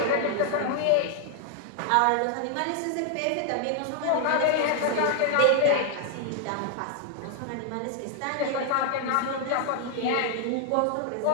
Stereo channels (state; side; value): different; both; correlation 0.00